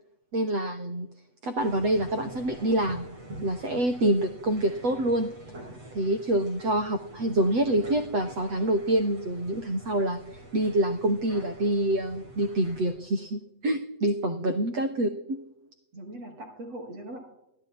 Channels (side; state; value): left; late; 8.1 ms